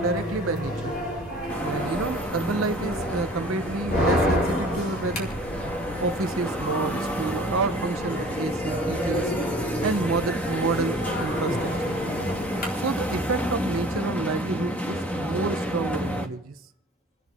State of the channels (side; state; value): both; normal; correlation 0.46